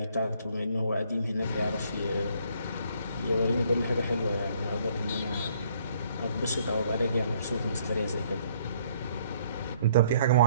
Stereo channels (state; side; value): inverted; both; correlation -0.64